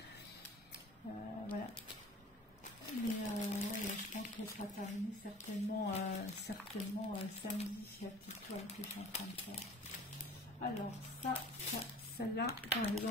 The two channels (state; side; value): normal; both; correlation 0.45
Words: Voilà. Mais je pense qu'elle sera terminée certainement, samedi, la petite toile que je suis en train de faire. Alors celle-là, par